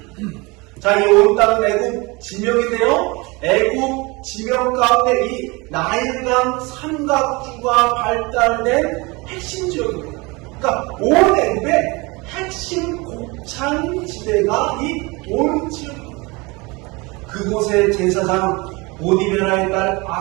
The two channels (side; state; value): left; quieter; 25.7 dB